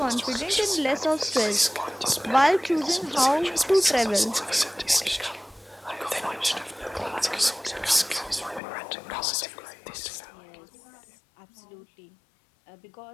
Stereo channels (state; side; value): drops out; right; at 8.6 s